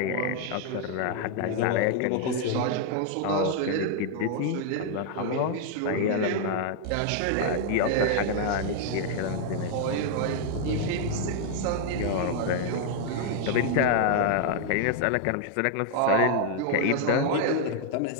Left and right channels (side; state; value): both; different; correlation 0.00